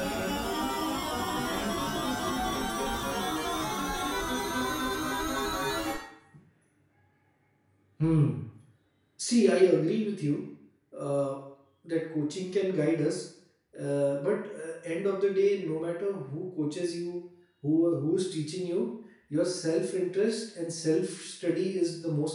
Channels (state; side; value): identical; both; correlation 1.00